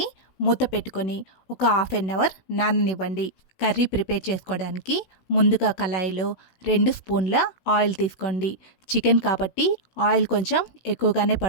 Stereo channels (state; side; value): late; right; 16 ms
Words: మూత పెట్టుకొని ఒక 1/2 అవర్ నాననివ్వండి. కర్రీ ప్రిపేర్ చేసుకోవడానికి ముందుగా కళాయిలో 2 స్పూన్ల ఆయిల్ తీసుకోండి. చికెన్ కాబట్టి ఆయిల్ కొంచెం ఎక్కువగానే